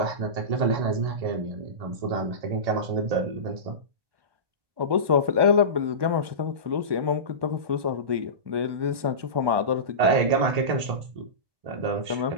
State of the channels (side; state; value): left; late; 1.2 ms